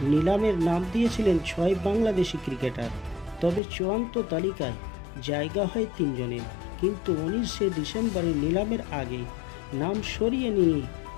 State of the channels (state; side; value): drops out; right; at 3.6 s